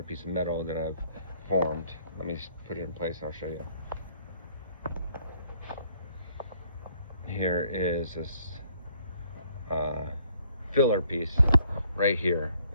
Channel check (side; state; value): both; inverted; correlation -0.64